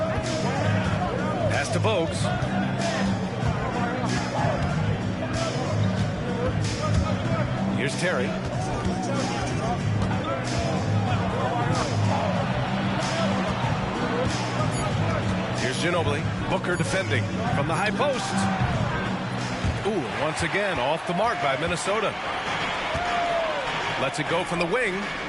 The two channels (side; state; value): both; identical; correlation 1.00